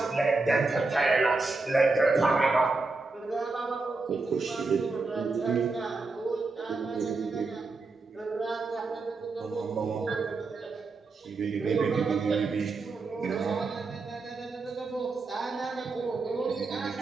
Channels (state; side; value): quieter; left; 3.7 dB